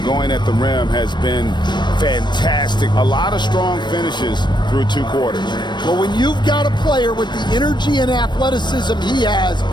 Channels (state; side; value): late; right; 0.22 ms